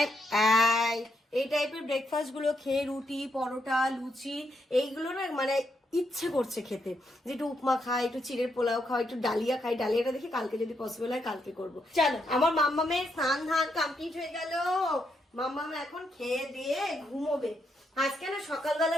এই টাইপের ব্রেকফাস্ট গুলো খেয়ে রুটি, পরোটা, লুচি এইগুলো না মানে ইচ্ছে করছে খেতে, যে একটু উপমা খাই, একটু চিড়ের পোলাও খাই, একটু ডালিয়া খাই। ডালিয়াটা দেখি কালকে যদি পসিবল হয় কালকে করবো। চলো, আমার মাম্মামের স্নান ধান কমপ্লিট হয়ে গেল। মাম্মাম এখন খেয়ে দিয়ে ঘুমোবে। আজকে না সকালবেলা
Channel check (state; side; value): normal; both; correlation 0.79